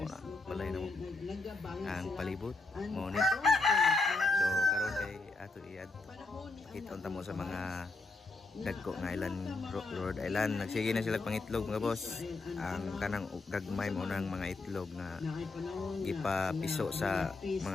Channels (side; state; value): right; quieter; 3.4 dB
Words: Balay na mo. Ang palibot mao ni. So karon kay ato iad kita mo sa mga dagko nga island, Rhode Island. Nagsige na sila pangitlog mga boss. Ang kanang gagmay mo ng mga itlog nga ipapiso sa